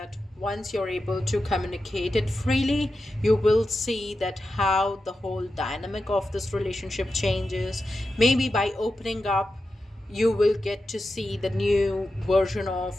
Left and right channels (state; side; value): normal; both; correlation 0.91